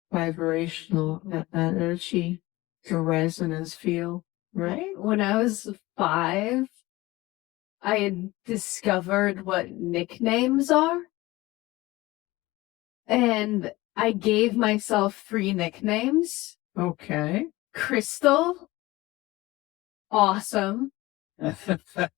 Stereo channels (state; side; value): quieter; right; 19.6 dB